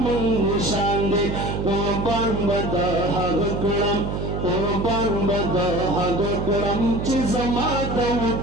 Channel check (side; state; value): right; noise; hum, 3 dB below the sound